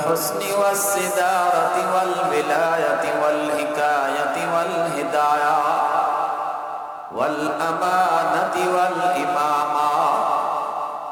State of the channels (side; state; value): both; identical; correlation 1.00